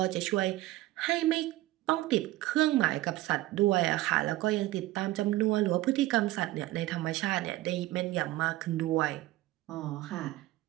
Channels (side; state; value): left; quieter; 17.0 dB